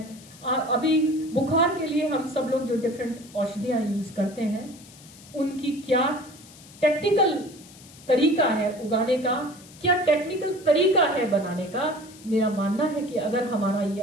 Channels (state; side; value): noise; left; hiss, 21 dB below the sound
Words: अभी बुखार के लिए हम सब लोग जो डिफरेंट औषधियां यूज करते हैं, उनकी क्या टेक्निकल तरीका है उगाने का, क्या टेक्निकल तरीका है बनाने का। मेरा मानना है कि अगर हमारा ये